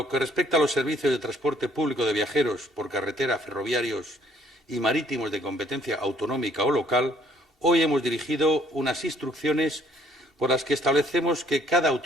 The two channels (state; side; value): normal; both; correlation 0.63